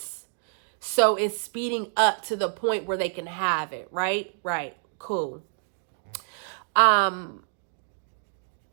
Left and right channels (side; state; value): left; silent; digital silence